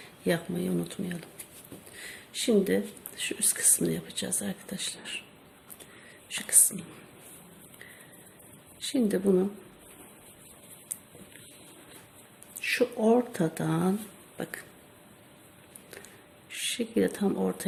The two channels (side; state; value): both; identical; correlation 1.00